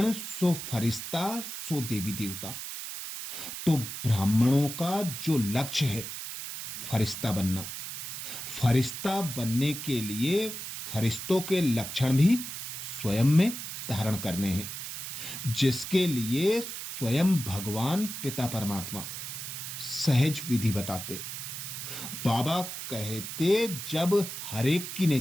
सो फरिश्ता सो देवी देवता। तो ब्राह्मणों का जो लक्ष्य है फरिश्ता बनना, फरिश्ता बनने के लिए फरिश्तों के लक्षण भी स्वयं में धारण करने हैं, जिसके लिए स्वयं भगवान पिता परमात्मा सहज विधि बताते। बाबा कहते जब हर एक की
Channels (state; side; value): noise; right; hiss, 7 dB below the sound